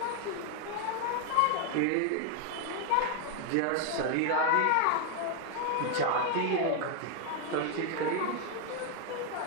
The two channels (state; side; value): different; both; correlation 0.00